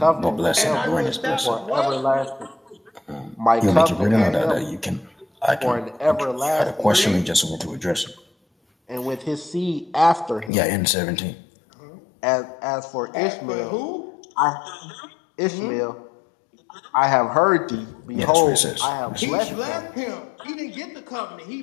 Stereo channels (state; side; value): drops out; right; at 10.5 s